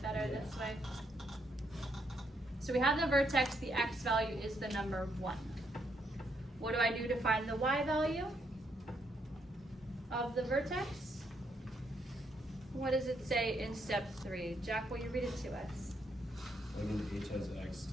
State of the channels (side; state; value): both; normal; correlation 0.75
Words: better this way? So we have the vertex, the x value is the number 1. What do I do to find the y value of the vertex? What does it say in step 3? Jack, will you read it to us? Plug in h as x